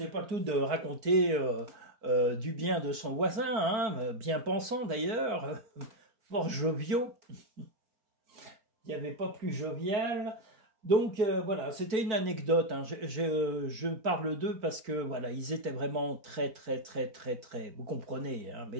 pas tout de raconter du bien de son voisin, hein, bien pensant d'ailleurs, fort joviaux. Il n'y avait pas plus jovial. Donc voilà, c'était une anecdote, hein. Je parle d'eux parce que voilà, ils étaient vraiment très, vous comprenez, hein,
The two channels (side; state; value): left; late; 4.5 ms